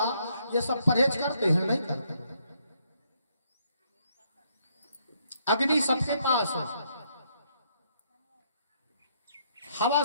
ये सब परहेज करते हैं? नहीं करते। अग्नि सबके पास है, हवा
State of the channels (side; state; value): both; inverted; correlation -0.72